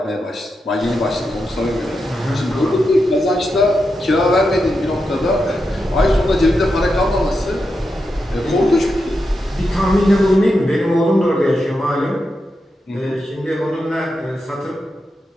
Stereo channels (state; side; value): normal; both; correlation 0.87